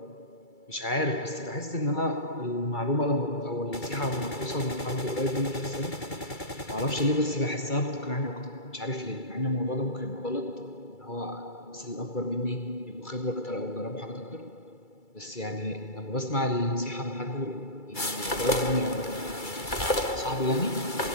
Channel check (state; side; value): late; right; 2.3 ms